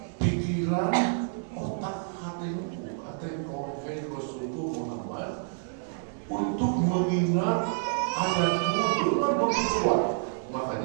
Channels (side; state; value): left; silent; digital silence